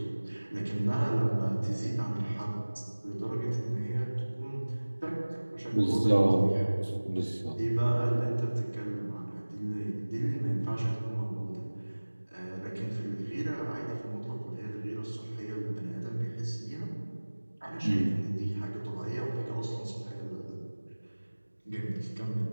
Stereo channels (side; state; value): both; inverted; correlation -1.00